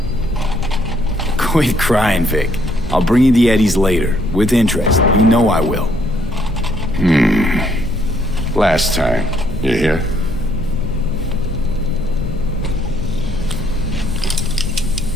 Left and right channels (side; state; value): both; normal; correlation 0.69